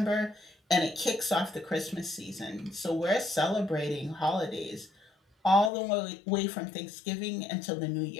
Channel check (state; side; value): drops out; right; at 5.7 s